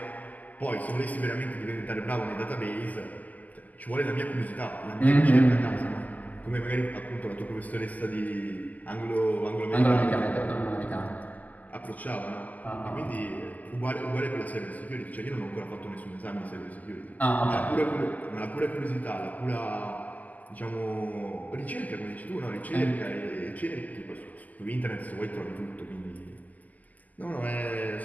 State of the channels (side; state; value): right; late; 0.079 ms